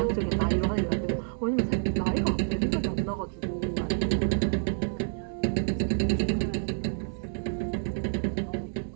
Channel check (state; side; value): silent; left; digital silence